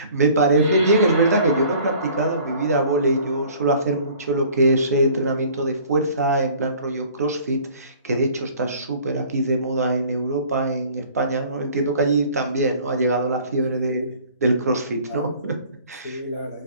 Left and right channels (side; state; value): both; inverted; correlation -0.51